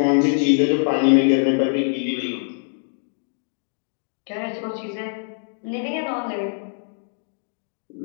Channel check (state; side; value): silent; right; digital silence